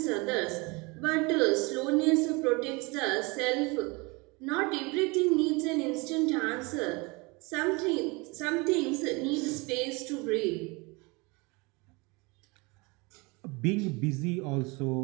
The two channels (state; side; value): quieter; left; 26.9 dB